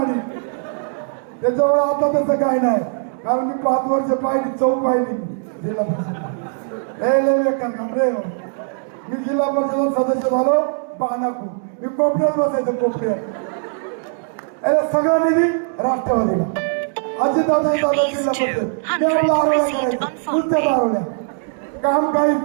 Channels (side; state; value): left; silent; digital silence